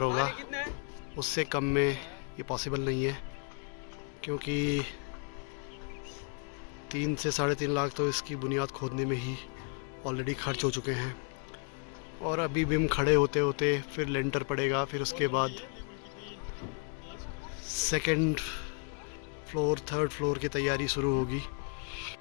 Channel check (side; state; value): right; quieter; 39.5 dB